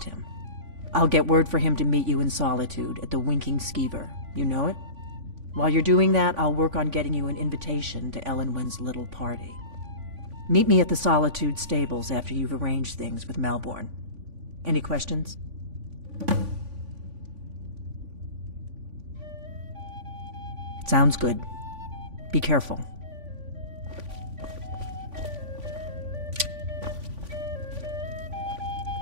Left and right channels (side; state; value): left; late; 3.5 ms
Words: him. I'll get word for him to meet you in Solitude at the Winking Skeever. You know it? While you're doing that, I'll work on getting you an invitation to Elenwen's little party. Meet me at the Solitude stables after you've arranged things with Malborn. Any questions? Sounds good. Be careful.